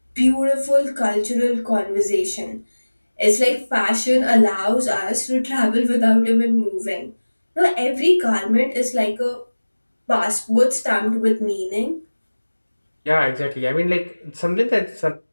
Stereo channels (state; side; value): inverted; both; correlation -1.00